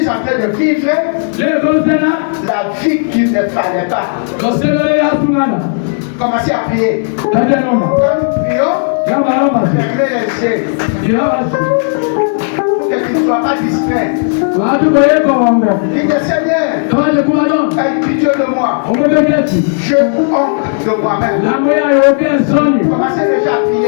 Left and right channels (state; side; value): silent; right; digital silence